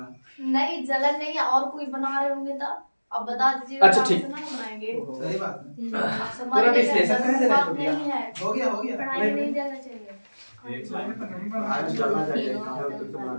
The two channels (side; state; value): both; inverted; correlation -1.00